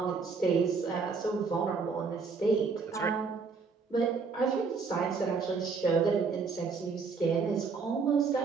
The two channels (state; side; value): quieter; left; 4.9 dB